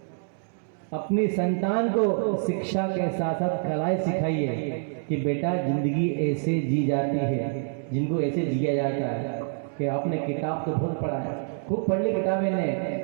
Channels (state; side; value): silent; left; 60 dB below the other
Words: अपनी संतान को शिक्षा के साथ साथ कलाएं सिखाइए कि बेटा जिंदगी ऐसे जी जाती है, जिनको ऐसे जिया जाता है। कि आपने किताब तो बहुत पढ़ा है, खूब पढ़ ली किताबें ने,